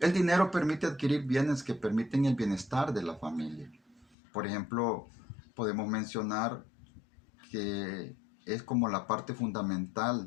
El dinero permite adquirir bienes que permiten el bienestar de la familia. Por ejemplo, podemos mencionar que es como la parte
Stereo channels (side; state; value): right; drops out; at 4.2 s